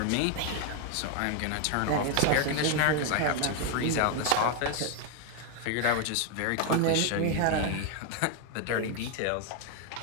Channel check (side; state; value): both; different; correlation 0.01